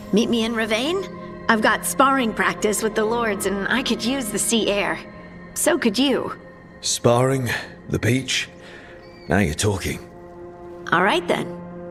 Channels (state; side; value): identical; both; correlation 1.00